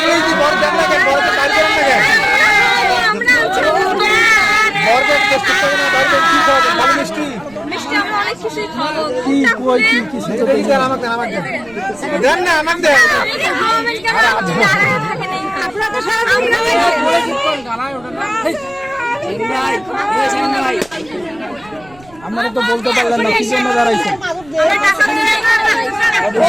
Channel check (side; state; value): right; noise; rumble, 25 dB below the sound